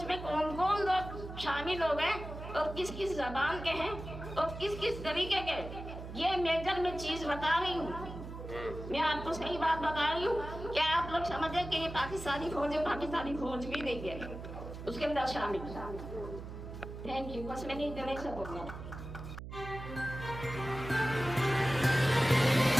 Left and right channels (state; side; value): noise; right; hum, 10 dB below the sound